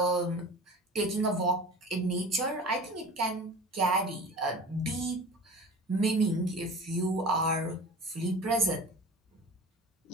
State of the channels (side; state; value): both; normal; correlation 0.38